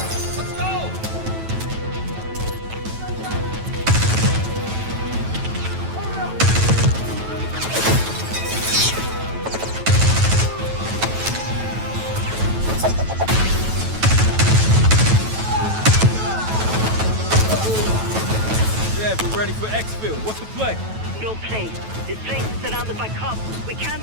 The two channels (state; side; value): late; left; 9.1 ms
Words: ready for exfil. What's the play? No play. This place is surrounded by cops. We can't